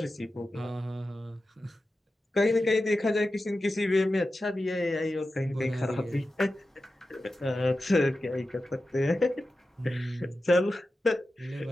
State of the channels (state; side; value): normal; both; correlation 0.92